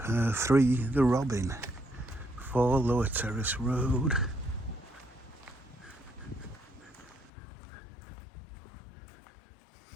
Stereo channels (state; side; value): drops out; right; at 7.3 s